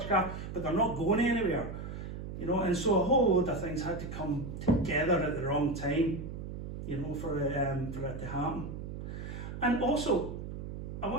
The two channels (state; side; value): noise; right; hum, 8 dB below the sound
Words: but they're not going anywhere. And so a whole load of things had to come together at the wrong time, for it to happen. And also, I